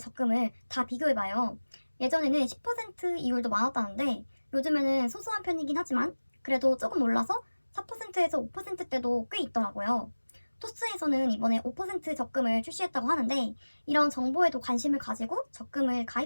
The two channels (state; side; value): inverted; both; correlation -1.00